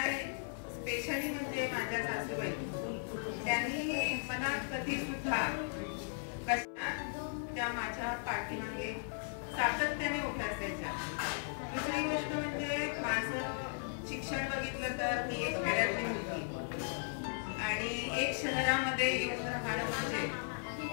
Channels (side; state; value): right; silent; 53 dB below the other